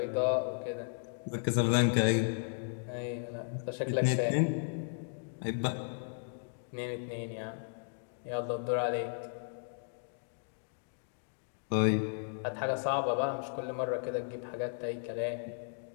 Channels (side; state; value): right; silent; digital silence